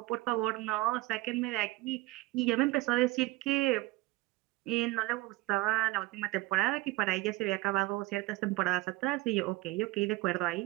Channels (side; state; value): left; quieter; 19.8 dB